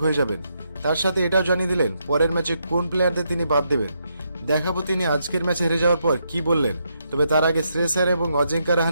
হয়ে যাবেন। তার সাথে এটাও জানিয়ে দিলেন পরের ম্যাচে কোন প্লেয়ারদের তিনি বাদ দেবেন। দেখাবো তিনি আজকের ম্যাচে হেরে যাওয়ার পর কি বললেন। তবে তার আগে শ্রেয়স আয়ার এবং অজিঙ্কা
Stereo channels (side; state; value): both; inverted; correlation -0.79